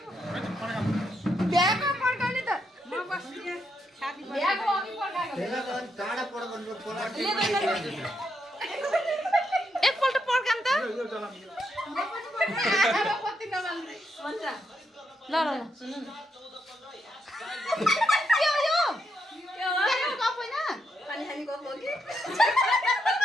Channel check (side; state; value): both; normal; correlation 0.80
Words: भ्याएको पड्काउने त म बस्दिए ह्यापी भ्याएको अघि पड्काएको टाढा पड्काउनु एकपल्ट पड्काम त कति नमाल्ने ल ल ल सुन्नु न के हो यो के हो गफ होइन पानी खाने गफ हो कि